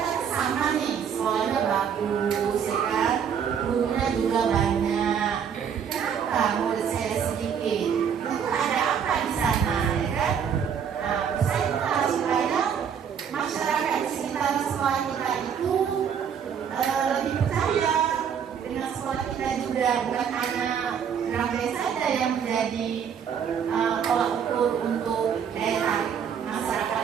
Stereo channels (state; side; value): quieter; left; 7.7 dB